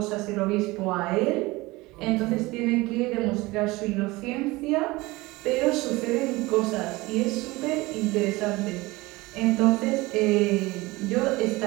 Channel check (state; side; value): quieter; left; 21.4 dB